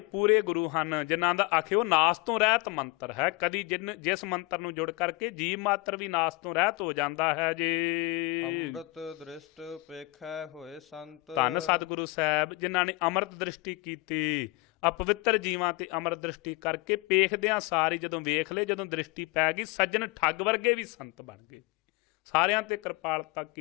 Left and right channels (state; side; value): quieter; right; 22.9 dB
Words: ਪੂਰੇ ਗੁਰੂ ਹਨ ਜਿਨ੍ਹਾਂ ਦਾ ਆਖਿਓ ਨਾਸ ਤੋਂ ਰਹਿਤ ਮੰਤਰ ਹੈ। ਕਦੀ ਜਿਸ ਮੰਤਰ ਨੂੰ ਜੁੜ ਕਰਕੇ ਜੀਵ ਮਾਤਰ ਵੀ ਨਾਸ ਤੋਂ ਰਹਿਤ ਹੋ ਜਾਂਦਾ ਹੈ ਜੀ। ਅੰਮ੍ਰਿਤ ਦ੍ਰਿਸ਼ਟ ਪੇਖੈ ਹੋਏ ਸੰਤ। ਧੰਨ ਸਤਿਗੁਰੂ ਸਾਹਿਬ ਜਿਨ੍ਹਾਂ ਨੇ ਅੰਮ੍ਰਿਤ ਦ੍ਰਿਸ਼ਟੀ ਕੀਤੀ, ਅਪਵਿੱਤਰ ਜੀਵਾਂ ਤੇ ਅੰਮ੍ਰਿਤ ਦ੍ਰਿਸ਼ਟੀ ਕਰਕੇ ਪੇਖਦਿਆਂ ਸਾਰੀ ਜਦੋਂ ਵੇਖ ਲਏ, ਜਦੋਂ ਦ੍ਰਿਸ਼ਟੀ ਪੈ ਗਈ, ਸੱਜਣ ਠੱਗ ਵਰਗੇ ਵੀ ਸੰਤ ਬਣ ਗਏ। ਸਾਰਿਆਂ ਤੇ ਕਿਰਪਾਲਤਾ